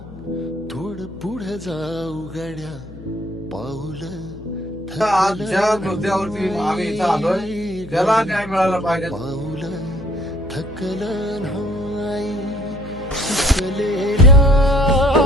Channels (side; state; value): left; noise; hum, 16 dB below the sound